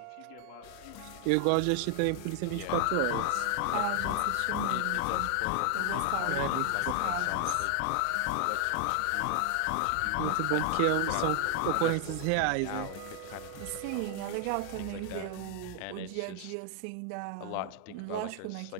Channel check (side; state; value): both; different; correlation 0.00